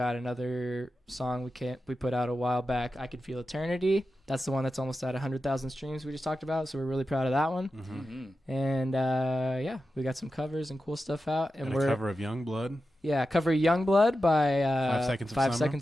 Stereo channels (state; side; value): normal; both; correlation 0.91